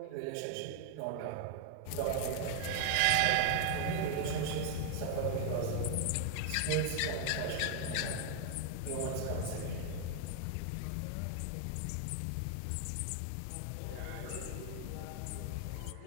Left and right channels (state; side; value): different; both; correlation 0.00